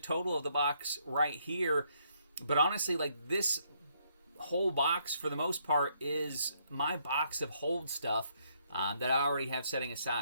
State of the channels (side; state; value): both; inverted; correlation -0.72